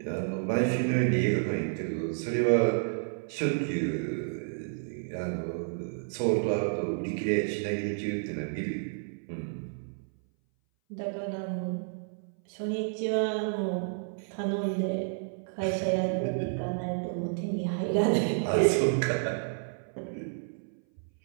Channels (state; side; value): silent; left; 57 dB below the other